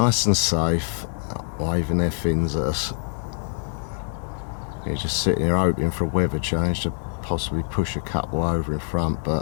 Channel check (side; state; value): right; silent; 62 dB below the other